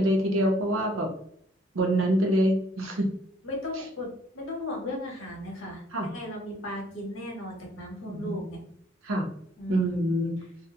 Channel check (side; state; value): both; normal; correlation 0.63